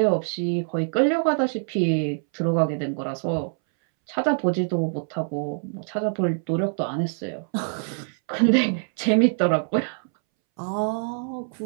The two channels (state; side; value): silent; left; 62 dB below the other